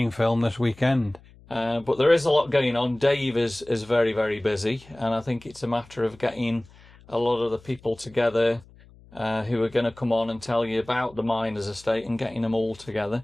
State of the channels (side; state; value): left; noise; hum, 25 dB below the sound